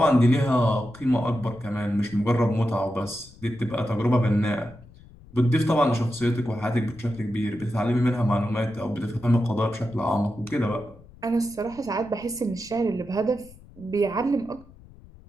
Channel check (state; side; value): noise; left; rumble, 22 dB below the sound